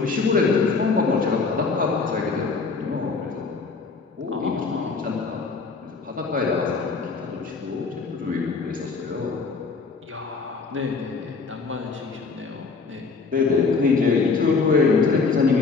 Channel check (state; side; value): quieter; right; 4.5 dB